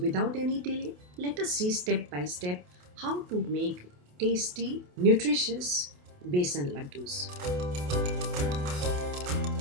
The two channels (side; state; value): left; late; 28 ms